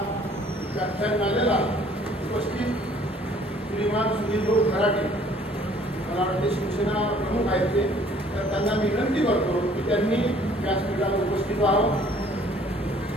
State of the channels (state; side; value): normal; both; correlation 0.57